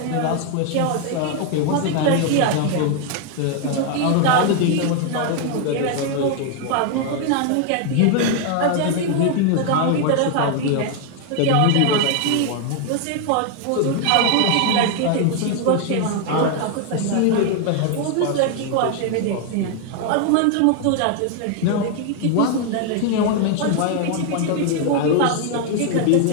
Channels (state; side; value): different; both; correlation 0.01